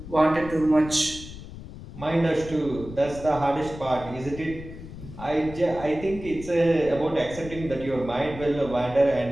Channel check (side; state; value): left; noise; rumble, 13 dB below the sound